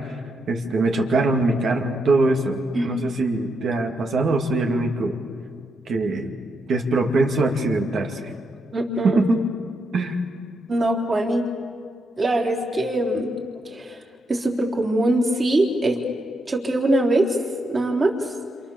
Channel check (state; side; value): normal; both; correlation 0.81